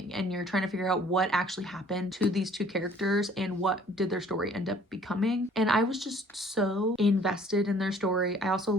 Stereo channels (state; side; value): normal; both; correlation 0.55